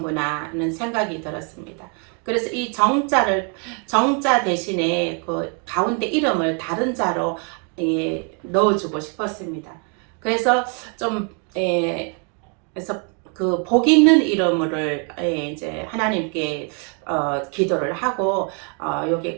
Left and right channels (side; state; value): left; quieter; 38.1 dB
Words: 하는 생각이 들었습니다. 그래서 이 정자 대신에 그 가운데 이름을 다른 자로 넣어주고 싶었습니다. 그래서 좀 그래서 그 복 있는 이름을 이제 하나님께 기도를 하고